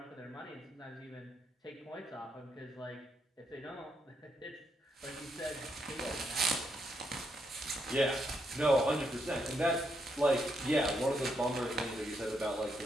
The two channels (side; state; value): both; normal; correlation 0.79